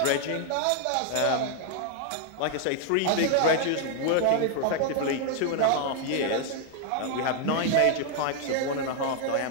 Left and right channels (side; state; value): both; different; correlation 0.00